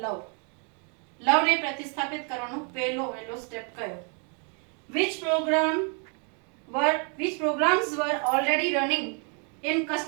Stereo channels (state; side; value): quieter; left; 39.0 dB